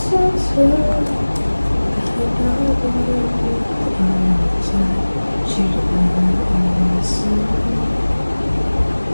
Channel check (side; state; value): both; inverted; correlation -1.00